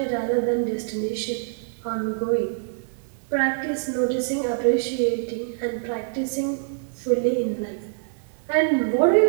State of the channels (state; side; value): silent; left; 62 dB below the other